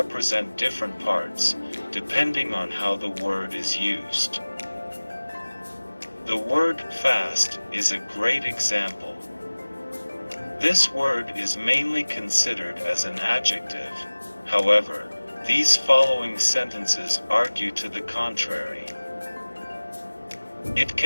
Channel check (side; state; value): both; inverted; correlation -1.00